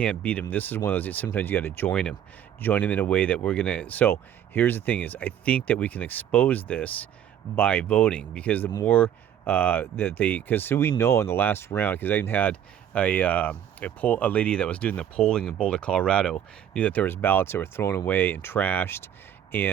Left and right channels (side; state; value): left; quieter; 9.9 dB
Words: beat them, this is one of those, sometimes you got to join them in a way that we're going to. So here's the thing is, I think that we can expose this by voting, because the more because we know in the last round, because I even had a lady that was doing the polling in Boulder, Colorado, knew that there was ballots that were thrown away and trashed,